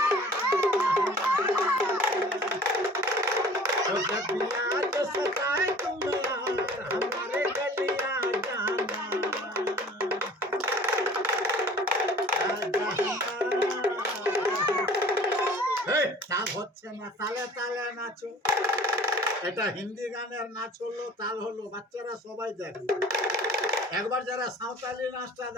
তাল হচ্ছে না তালে তালে নাচো এটা হিন্দি গানের নাচ হলো তাল হলো বাচ্চারা সবাই দেখে একবার যারা সাঁওতালি নাচটা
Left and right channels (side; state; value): both; normal; correlation 0.47